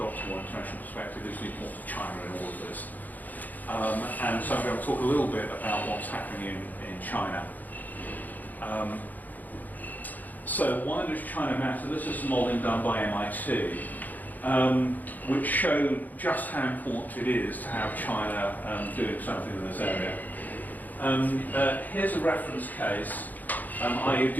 a more international perspective is the importance of China in all of this. And so I'm going to talk a little bit about what's happening in China. So why does China matter? This is modelling done by MIT, which showed just how important it is to have China doing something in this area. Here's a reference case. I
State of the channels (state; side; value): late; right; 0.082 ms